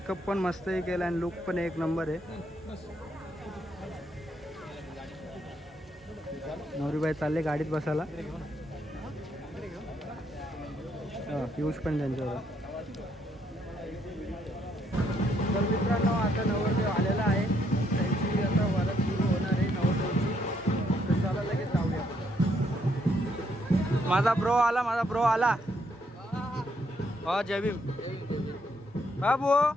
पण मस्तही केला आणि लुक पण एक नंबर आहे. नवरीबाई चालले गाडीत बसायला. पियुष पण त्यांच्यावर. तर मित्रांनो, आता नवरदेव आलेला आहे. त्यांची आता वरात सुरू होणार आहे नवरदेवची. तर चला लगेच जाऊया. माझा ब्रो आला. हो, जय भीम.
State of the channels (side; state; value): both; normal; correlation 0.73